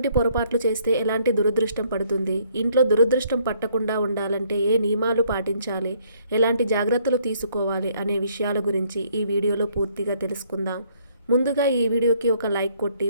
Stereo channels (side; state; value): both; inverted; correlation -0.65